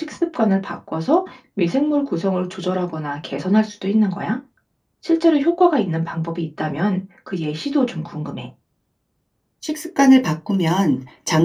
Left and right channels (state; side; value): identical; both; correlation 1.00